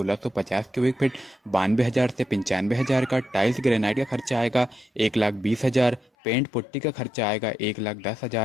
क्यूबिक फीट 92,000 से 95,000 का। टाइल्स ग्रेनाइट का खर्चा आएगा 1,20,000। पेंट पुट्टी का खर्चा आएगा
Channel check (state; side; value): drops out; right; at 6.1 s